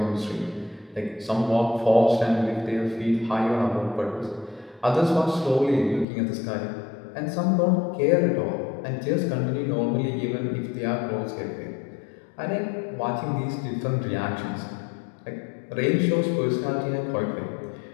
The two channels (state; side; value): drops out; right; at 6.1 s